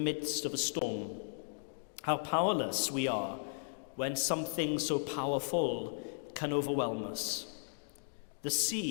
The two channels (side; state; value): right; silent; digital silence